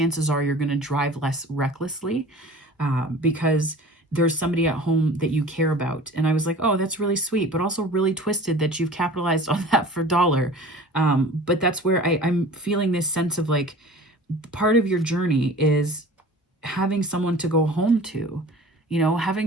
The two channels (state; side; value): normal; both; correlation 0.43